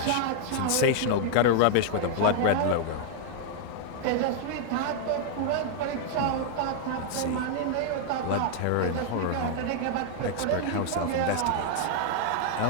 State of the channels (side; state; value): both; different; correlation -0.01